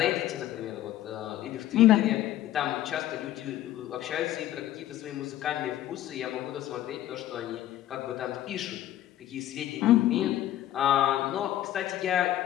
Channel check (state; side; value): quieter; right; 13.2 dB